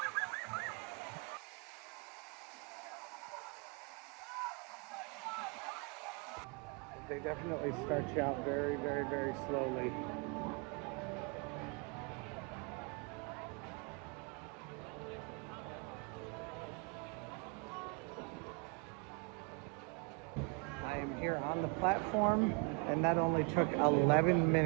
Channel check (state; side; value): quieter; left; 32.8 dB